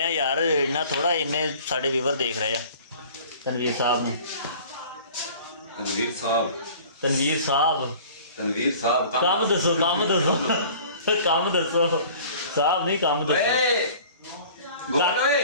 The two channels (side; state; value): both; inverted; correlation -0.47